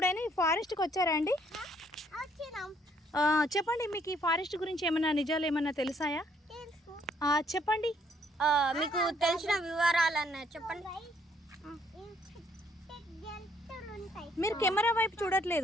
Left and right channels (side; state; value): both; normal; correlation 0.67